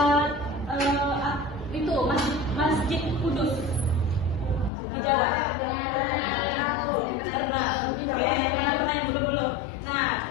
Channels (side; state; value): right; drops out; at 4.7 s